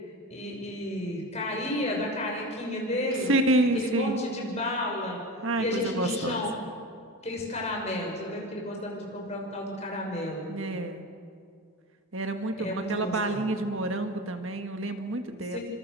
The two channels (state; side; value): normal; both; correlation 0.28